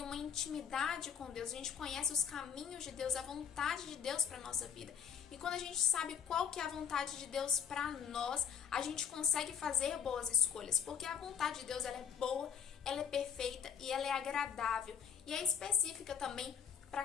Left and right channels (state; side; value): quieter; right; 7.5 dB